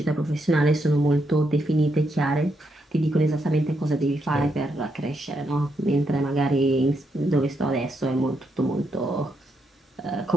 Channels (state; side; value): normal; both; correlation 0.79